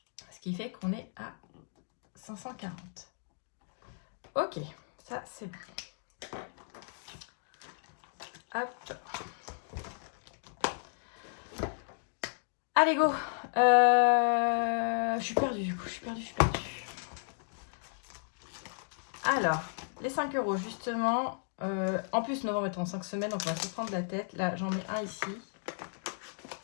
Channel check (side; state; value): right; silent; digital silence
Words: Ce qui fait qu'on est à 540. Ok, ça c'est bon. Hop. Allez, go. Je suis perdue, du coup. Je suis perdue. Alors, les 5 € justement. En plus, novembre est en 5 semaines, donc on va se prendre la tête. Là, j'en mets un ici.